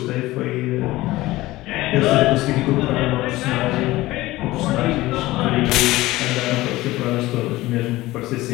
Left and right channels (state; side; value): quieter; right; 18.1 dB